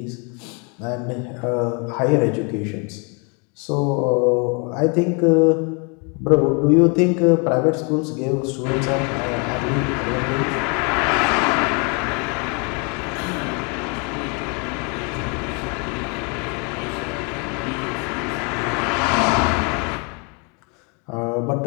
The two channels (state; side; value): quieter; right; 34.1 dB